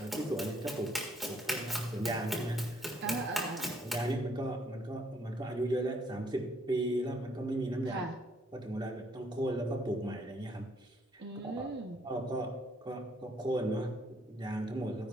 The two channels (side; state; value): both; normal; correlation 0.67